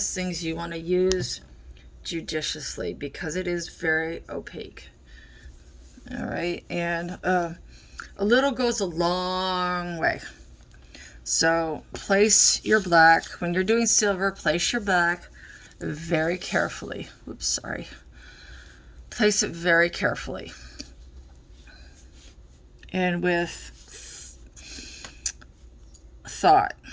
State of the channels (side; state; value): both; identical; correlation 1.00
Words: things you want to use judiciously because it is very opaque. All right, and a little goes a long way. So place your black, when you're doing silver, place your black very carefully. Oops, sorry. Place it very carefully. And with thought.